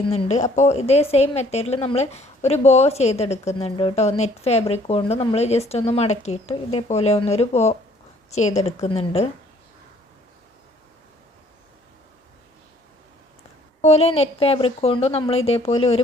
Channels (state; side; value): normal; both; correlation 0.59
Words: അപ്പോൾ ഇതേ സെയിം മെത്തേഡിൽ നമ്മൾ ഒരു ബോ ചെയ്തെടുക്കുന്നുണ്ട് കേട്ടോ. നെറ്റ് ഫാബ്രിക് കൊണ്ട് നമ്മൾ ജസ്റ്റ് ഒന്ന് മടക്കിയിട്ട് ഇതേപോലെ ഒന്നൊരു ബോ ചെയ്തെടുക്കുന്നുണ്ട്. അതുപോലെ നെറ്റ് ഫാബ്രിക് കൊണ്ട് നമ്മൾ ഇതേപോലെ